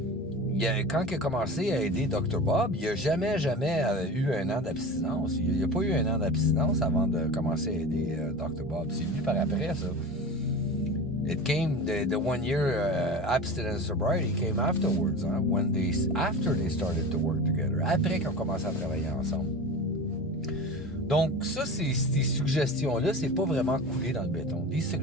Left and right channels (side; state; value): both; normal; correlation 0.31